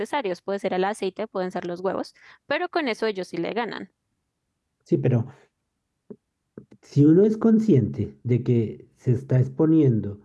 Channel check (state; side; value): identical; both; correlation 1.00